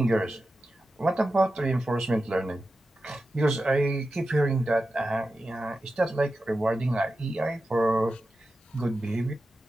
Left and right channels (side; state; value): both; normal; correlation 0.92